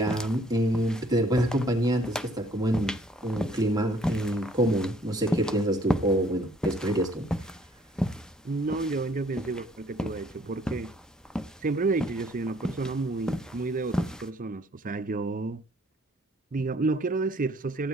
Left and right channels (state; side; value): normal; both; correlation 0.62